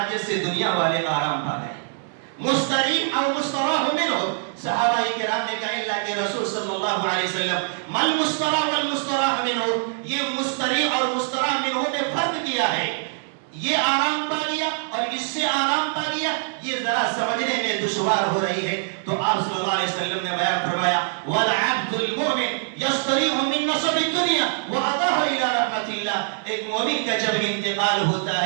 سے دنیا والے آرام پا گئے. مستریح اور مستراح منہ. صحابہ کرام نے کہا اللہ کے رسول صلی اللہ علیہ وسلم مل مستراح والمستراح منہ. یہ مستریح اور مستراح منہ نے فرق کیا ہے. یہ آرام پا گیا اور اس سے آرام پا گیا یہ ذرا سمجھنے میں دشوار ہو رہی ہے. تو آپ صلی اللہ علیہ وسلم نے بیان فرمایا والعبد المؤمن یستریح من نصب الدنیا وعطاہ الى رحمت اللہ. ایک مومن کا جب انتقال ہوتا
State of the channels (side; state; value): left; silent; digital silence